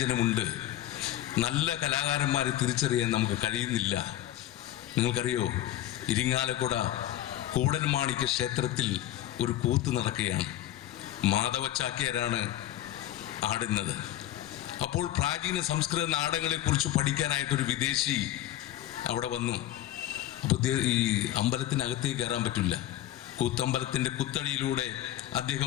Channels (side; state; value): right; quieter; 13.4 dB